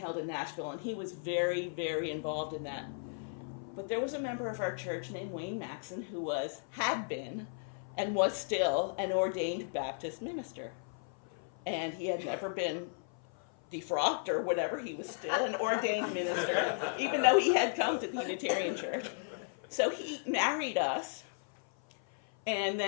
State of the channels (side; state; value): right; silent; 54 dB below the other